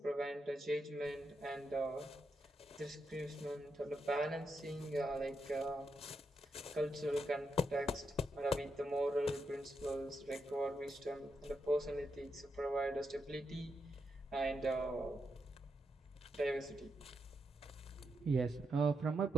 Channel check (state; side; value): normal; both; correlation 0.83